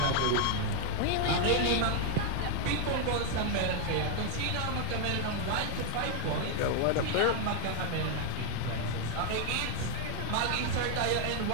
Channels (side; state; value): both; different; correlation 0.00